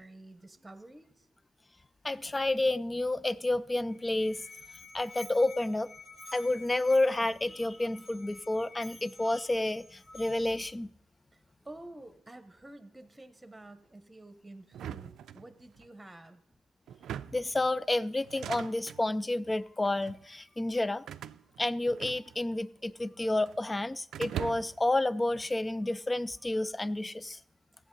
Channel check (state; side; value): normal; both; correlation 0.98